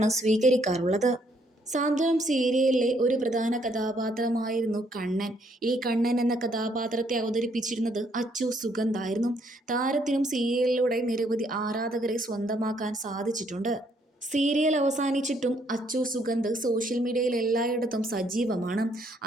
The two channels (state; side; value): normal; both; correlation 0.69